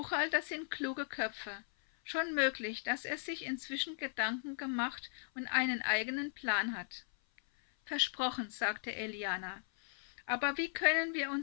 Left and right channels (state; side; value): silent; right; 53 dB below the other